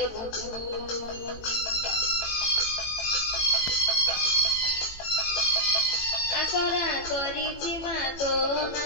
বুঝু আশরা করিছি মা তো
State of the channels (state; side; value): late; right; 18 ms